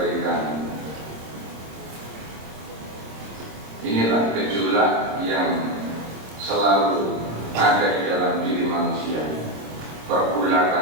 Inilah gejolak yang selalu ada di dalam diri manusia.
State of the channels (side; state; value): left; late; 26 ms